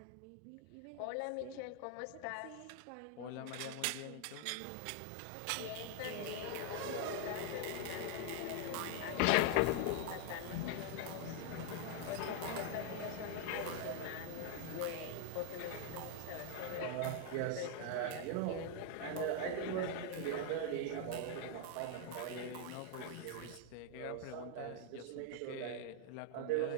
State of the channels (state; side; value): different; both; correlation 0.00